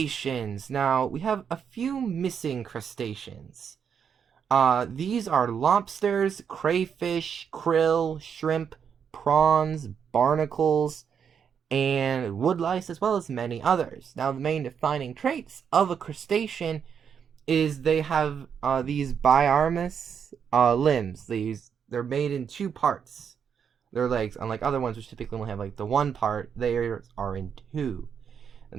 Now, we have a few missing crustaceans. These are lobsters, crayfish, krill, shrimp, prawns, barnacles, and woodlice, as well as many others. Now, the main defining traits of a crustacean is they have these biramous limbs. They're made in 2 parts. their legs, unlike other ones which typically only have like the one part, theirs are in two.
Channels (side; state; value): left; quieter; 7.4 dB